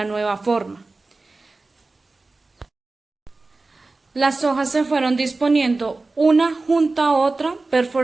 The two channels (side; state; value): left; quieter; 3.5 dB